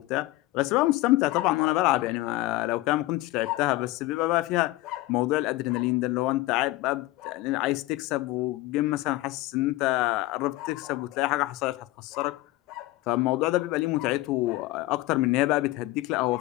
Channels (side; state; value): right; quieter; 18.3 dB